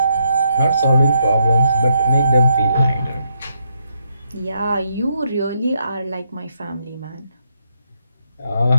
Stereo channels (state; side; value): inverted; both; correlation -0.78